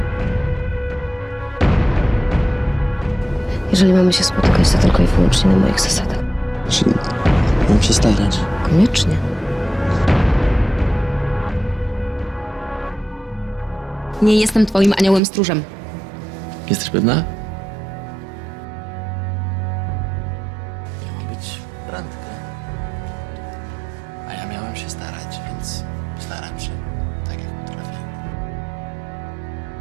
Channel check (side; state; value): left; drops out; at 15.2 s